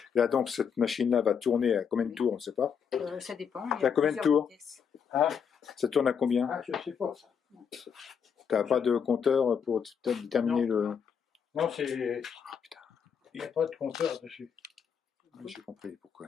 Là, donc, cette machine-là va tourner à combien de tours, on ne sait pas. Ça dépend. Ça a combien de tours? Ah, Ça tourne à combien? je sais pas ça. Tu n'as pas de compteur pour déterminer le... Non, il n'y a pas de compteur dessus. J'ai compris pourquoi.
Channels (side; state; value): right; quieter; 7.1 dB